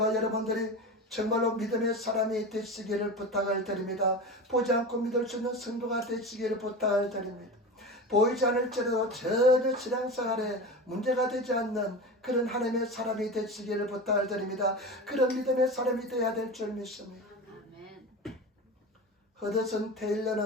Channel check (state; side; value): normal; both; correlation 0.28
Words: 여러분들이 정말로 믿음의 사람이 되시기를 부탁을 드립니다. 보지 않고 믿을 수 있는 성도가 되시기를 부탁을 드립니다. 보이지 않을지라도 전혀 신앙생활에 문제가 되지 않는 그런 하나님의 사람이 되시기를 부탁을 드립니다. 그런 믿음의 사람이 되어야 될 줄 믿습니다. 허드슨